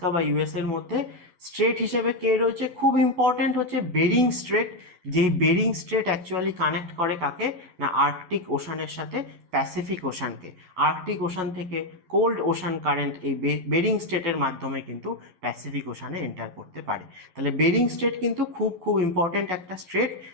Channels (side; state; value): left; late; 11 ms